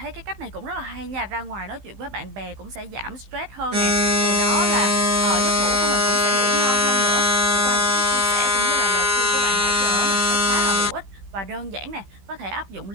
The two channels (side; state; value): left; late; 15 ms